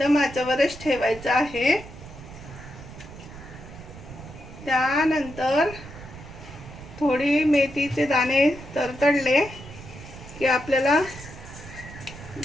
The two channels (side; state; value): right; noise; rumble, 15 dB below the sound